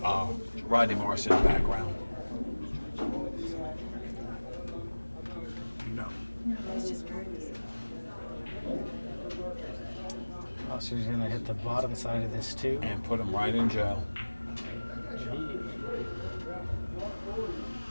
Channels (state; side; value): inverted; both; correlation -1.00